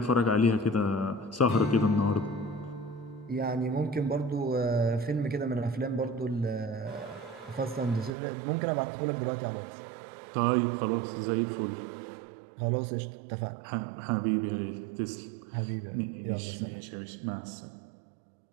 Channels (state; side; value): drops out; left; at 8.1 s